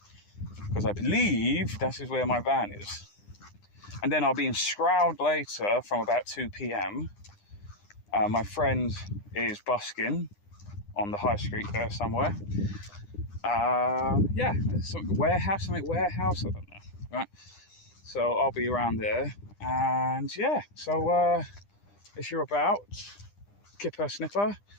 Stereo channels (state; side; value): late; right; 9.9 ms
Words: because I believe that is where my van is. And then I'll be in Stroud later from about 2 p.m. My friend is busking on the high street there somewhere. Yeah, some warehouse, I don't know, right? So I'll be around there, and yeah, so if you're about, Kipper Sniffer,